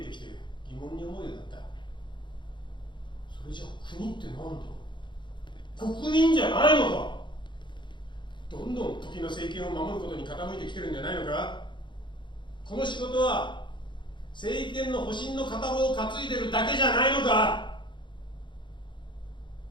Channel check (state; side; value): late; right; 0.23 ms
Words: てきて疑問に思うようになった。それじゃあ国って何だ？国民じゃないのか？どんどん時の政権を守ることに傾いてきてるんじゃないのか？この仕事は政権の保身の片棒を担いでるだけじゃないのか？